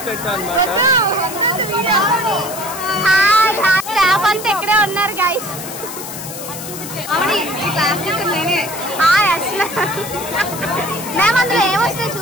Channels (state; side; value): noise; left; hiss, 10 dB below the sound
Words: స్టాఫ్ అంతా ఇక్కడే ఉన్నారు గైస్. మ్యామ్ అందులో ఏమొస్తాయో